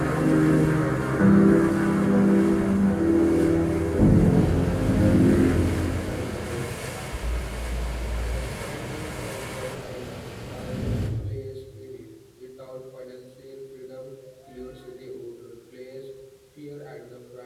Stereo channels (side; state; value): both; identical; correlation 1.00